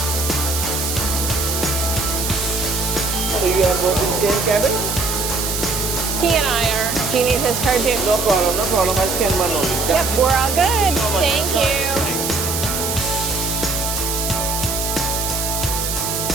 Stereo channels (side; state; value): right; noise; hiss, 2 dB below the sound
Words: So you are both in the same cabin? He and I are. Do you need his card too? No problem, no problem. I'll scan one only. Yep, we're all good. Thank you.